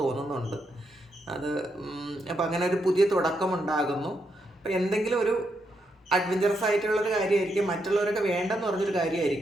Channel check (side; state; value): both; normal; correlation 0.80